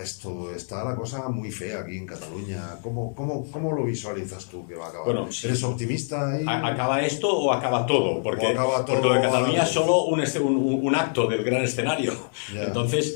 esto? Está la cosa muy fea aquí en Cataluña. ¿Cómo lo visualizas tú que va a acabar? Bueno, ¿eres optimista ahí? ¿Acaba esto o acaba todo? Porque lo de Cataluña es solo un acto del gran escenario. Yeah.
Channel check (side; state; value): right; silent; 61 dB below the other